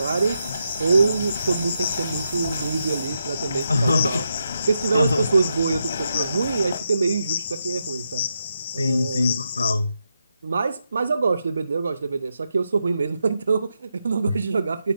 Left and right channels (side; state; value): both; inverted; correlation -0.84